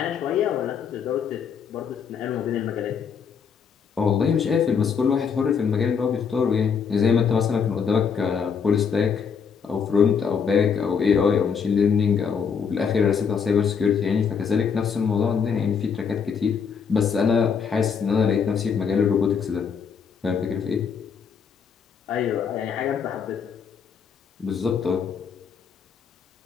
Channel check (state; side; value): quieter; right; 6.5 dB